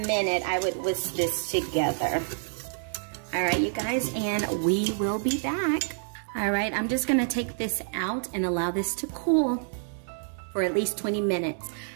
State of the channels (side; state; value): left; silent; digital silence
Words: minute, I would whisk this together. All right, you guys, and we will be back. All right, I'm just gonna take this out and allow this to cool for at least 20 minutes.